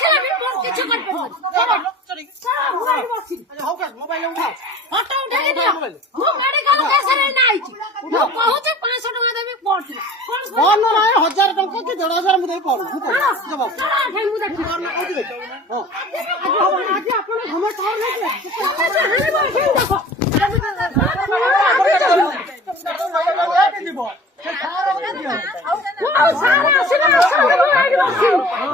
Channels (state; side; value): normal; both; correlation 0.43